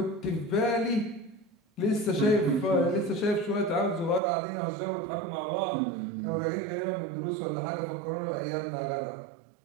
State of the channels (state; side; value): drops out; left; at 4.2 s